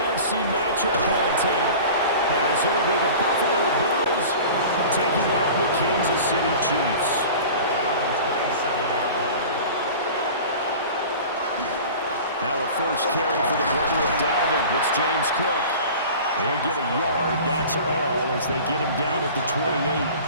matchup on tap, as it'll be the Buffalo Bills taking on the Kansas City Chiefs. Now a first carry for the brother of Dalvin. It's James Cook. They'll get a yard, that's all, as they get him down at the 28.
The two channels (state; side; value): inverted; both; correlation -0.39